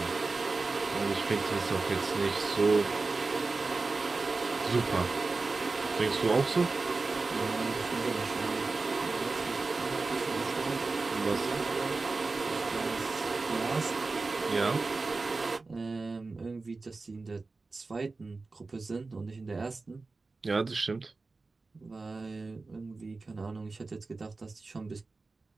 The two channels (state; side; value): quieter; left; 3.8 dB